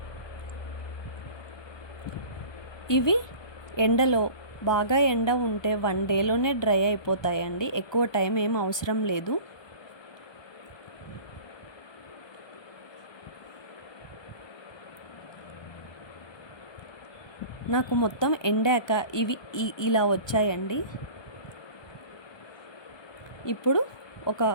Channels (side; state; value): right; late; 1.2 ms